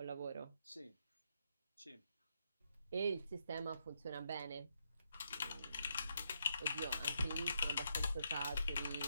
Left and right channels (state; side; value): inverted; both; correlation -0.78